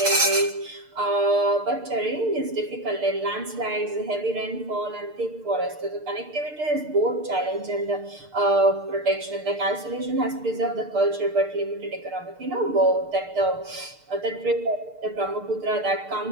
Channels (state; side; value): late; left; 6.7 ms